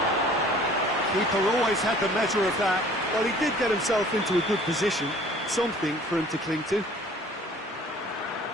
Keeper always had the measure of that. Well, he did get himself into a good position, something for him to cling to.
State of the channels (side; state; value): both; normal; correlation 0.51